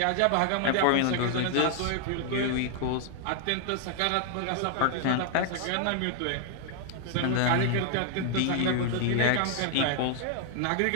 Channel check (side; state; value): both; different; correlation 0.00